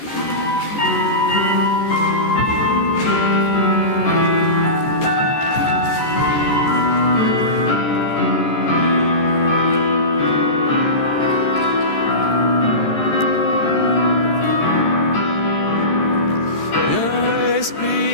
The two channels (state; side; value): late; right; 13 ms